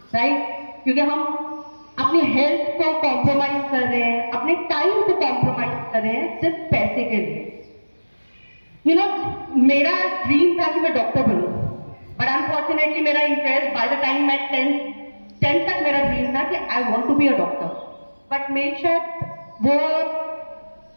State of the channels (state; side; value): inverted; both; correlation -1.00